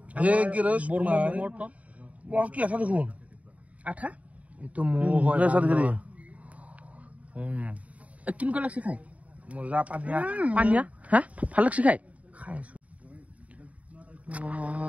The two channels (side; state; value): left; late; 0.068 ms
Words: হে কি রে বর্মা মোর টপ বস কি আছে দেখুন আঠা এতো মো হয় না সাথে করে কিন কো লাগছে খাই মজা পানিয়া পানিয়া হ্যাঁ ভাল লাগছে খাই খাইছো